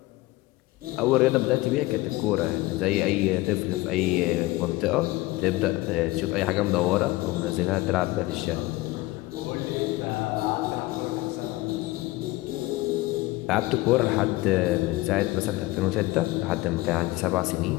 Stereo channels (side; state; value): right; quieter; 19.6 dB